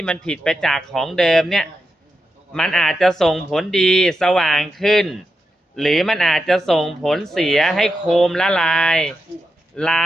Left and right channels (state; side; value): normal; both; correlation 0.87